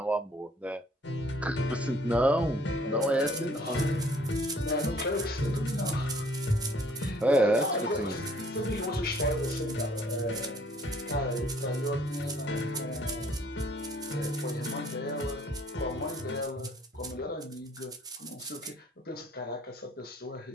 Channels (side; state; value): both; normal; correlation 0.60